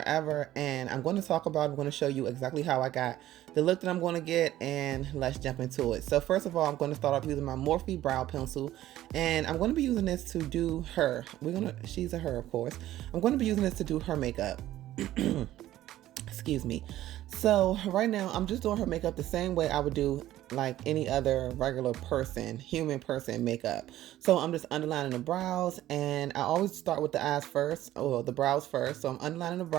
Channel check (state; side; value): quieter; left; 14.0 dB